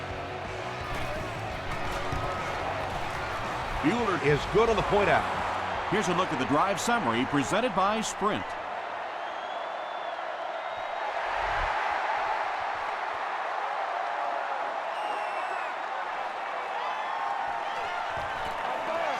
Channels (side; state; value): both; identical; correlation 1.00